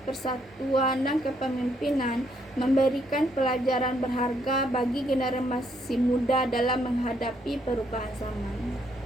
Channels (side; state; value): both; normal; correlation 0.72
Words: persatuan, dan kepemimpinan memberikan pelajaran berharga bagi generasi muda dalam menghadapi perubahan zaman.